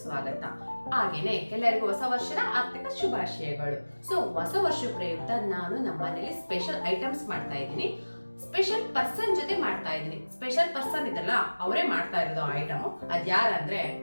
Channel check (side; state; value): both; inverted; correlation -1.00